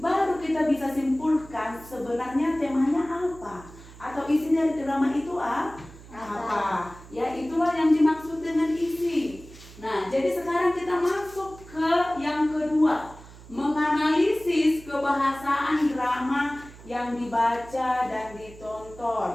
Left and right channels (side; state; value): right; noise; hum, 19 dB below the sound